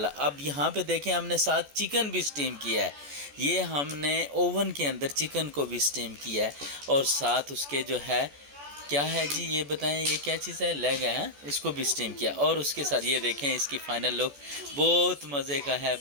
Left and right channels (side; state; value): left; late; 14 ms